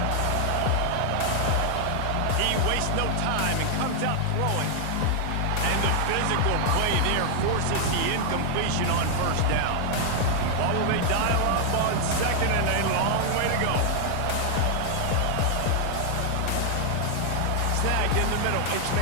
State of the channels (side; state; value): both; different; correlation 0.00